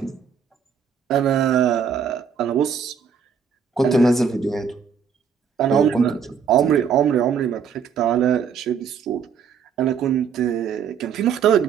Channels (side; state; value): left; quieter; 6.8 dB